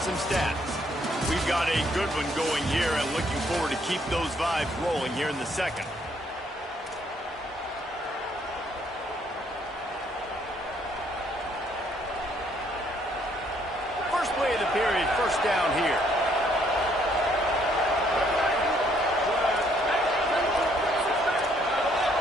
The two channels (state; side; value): normal; both; correlation 0.67